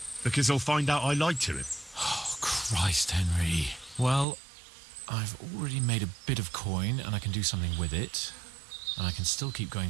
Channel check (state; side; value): drops out; left; at 4.2 s